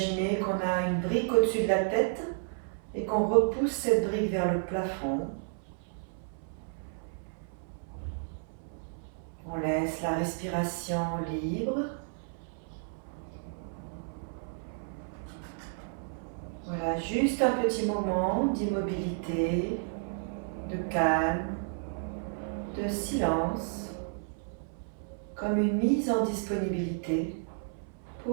qu'on a une brique au-dessus de la tête et qu'on repousse cette brique vers le plafond. On laisse la respiration libre. Voilà, juste un petit moment d'immobilité, de calme, de silence, comme une mise en disponibilité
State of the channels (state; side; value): silent; left; 56 dB below the other